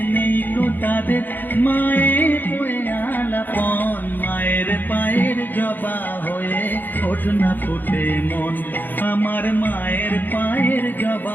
নেই তো তাদের মায়ের বয়ে আলাপন মায়ের পায়ের জবা হয়ে ওঠ না ফুটে মন আমার মায়ের পায়ের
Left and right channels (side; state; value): right; late; 0.089 ms